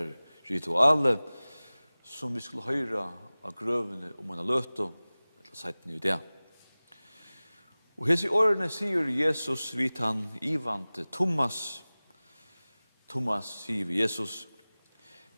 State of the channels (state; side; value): inverted; both; correlation -0.99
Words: rituale, som vi skulle høyra av grøvene om man har løtt og seiten i det. Og hese årene sier Jesus vidt han ivante Thomas. Thomas sier vi Jesus,